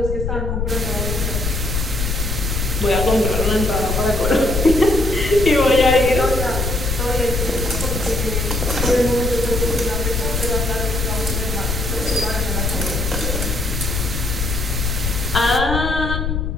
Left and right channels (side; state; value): left; noise; rumble, 1 dB below the sound